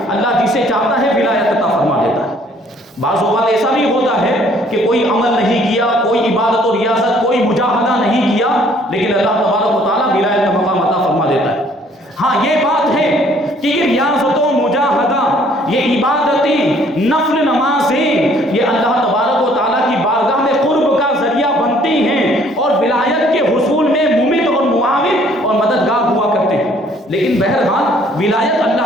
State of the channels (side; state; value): both; normal; correlation 0.60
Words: اللہ جسے چاہتا ہے ولایت عطا فرما دیتا ہے۔ بعض اوقات ایسا بھی ہوتا ہے کہ کوئی عمل نہیں کیا، کوئی عبادت و ریاضت، کوئی مجاہدہ نہیں کیا، لیکن اللہ تبارک و تعالیٰ ولایت کا مقام عطا فرما دیتا ہے۔ ہاں یہ بات ہے کہ یہ ریاضت و مجاہدہ، یہ عبادتیں، نفل نمازیں، یہ اللہ تبارک و تعالیٰ کی بارگاہ میں قرب کا ذریعہ بنتی ہیں اور ولایت کے حصول میں ممد اور معاون اور مددگار ہوا کرتے ہیں، لیکن بہرحال ولایت